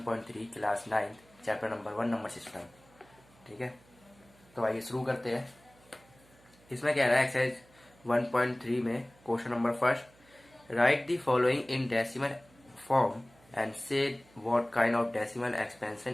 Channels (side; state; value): right; noise; hum, 28 dB below the sound